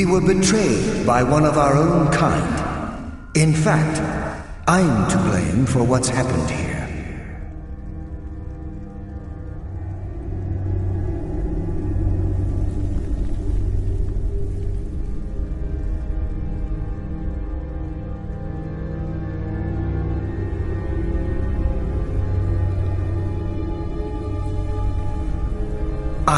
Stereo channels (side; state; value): both; identical; correlation 1.00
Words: were betrayed by one of our own kind. In fact, I'm to blame for what's happened here.